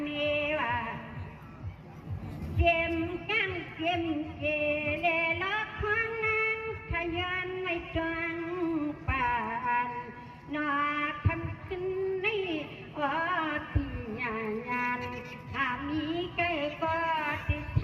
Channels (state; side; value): identical; both; correlation 1.00